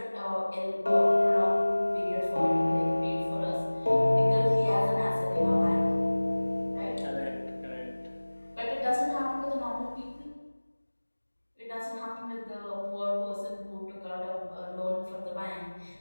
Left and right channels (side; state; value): both; inverted; correlation -1.00